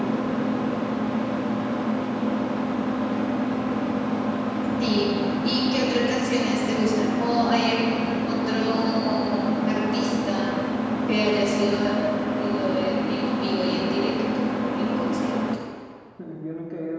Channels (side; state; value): both; identical; correlation 1.00